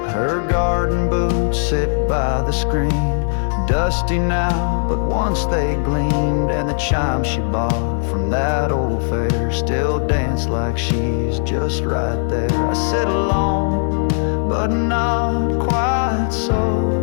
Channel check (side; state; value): right; silent; digital silence